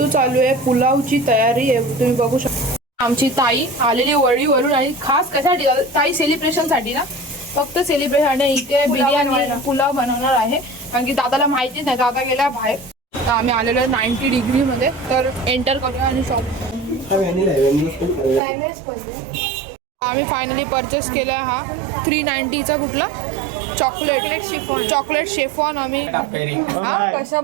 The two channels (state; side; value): drops out; left; at 18.4 s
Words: चालू आहे पुलावची तयारी आहे तुम्ही बघू शकता. आमची ताई आलेली वळीवरून आणि खास कशासाठी ताई सेलिब्रेशन साठी ना फक्त सेलिब्रेशन आणि इथे बिर्याणी पुलाव बनवणार आहे कारण की दादाला माहिती नाही दादा गेला बाहेर. तर आम्ही आलेलो आहे 90 डिग्री मध्ये तर एंटर करूया आणि शॉप. आम्ही फायनली परचेस केला हा 390चा कुठला चॉकलेट शेफॉन आम्ही